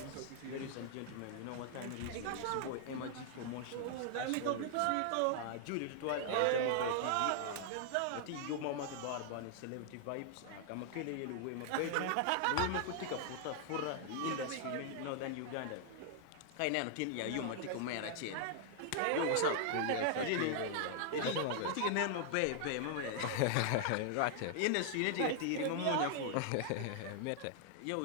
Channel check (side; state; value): both; different; correlation 0.00